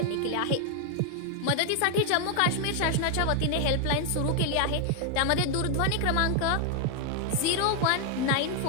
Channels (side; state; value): both; different; correlation 0.00